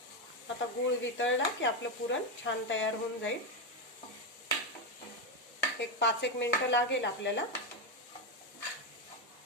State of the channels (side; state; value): both; normal; correlation 0.08